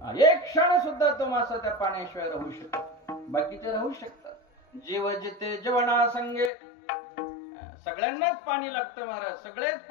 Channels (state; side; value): drops out; right; at 6.5 s